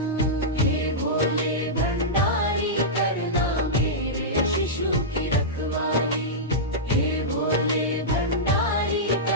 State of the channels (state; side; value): normal; both; correlation -0.11